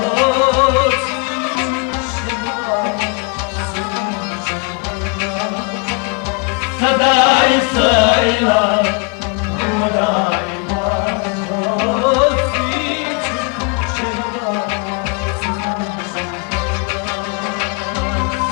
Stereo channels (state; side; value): quieter; right; 30.9 dB